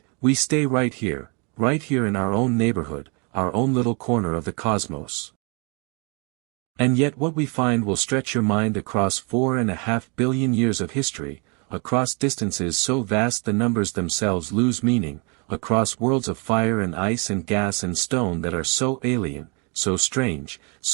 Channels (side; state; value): left; quieter; 33.6 dB